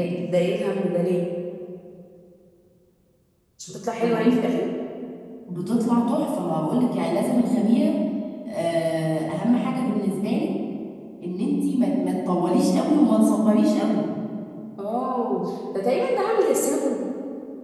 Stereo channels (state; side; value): identical; both; correlation 1.00